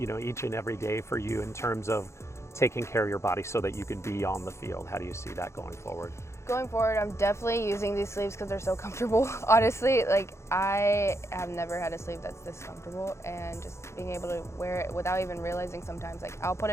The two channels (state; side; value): late; right; 0.13 ms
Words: know, each and every day for you in terms of taking care of your body so that you can be on the field? How do you see that going forward? Going forward, I'm definitely using these sleeves because they're so comfortable. Honestly, like I have never had a sleeve that's this comfortable, and just being able to wear it without even realizing sometimes, like I'll put